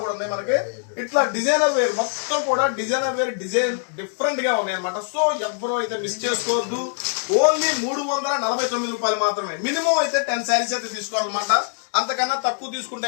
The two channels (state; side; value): silent; right; digital silence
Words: కూడా ఉన్నాయి మనకి. ఇట్లా డిజైనర్ వేర్ మొత్తం కూడా డిజైన్ డిఫరెంట్ గా ఉన్నాయి అనమాట. సో ఎవరో అయితే మిస్ చేసుకోవద్దు. ఓన్లీ 349 రూపాయలు మాత్రమే. మినిమం అయితే 10 శారీస్ అయితే తీసుకోవాలన్నమాట. అంతకన్నా తక్కువ తీసుకుంటే